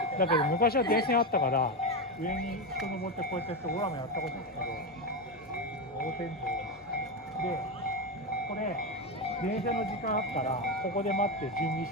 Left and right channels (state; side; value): normal; both; correlation 0.12